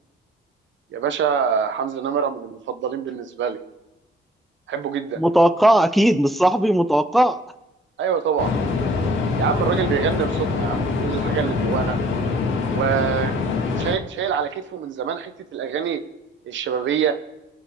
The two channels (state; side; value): normal; both; correlation 0.54